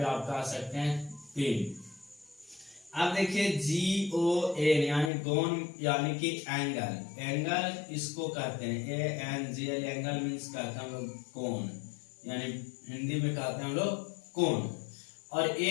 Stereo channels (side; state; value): right; drops out; at 5.1 s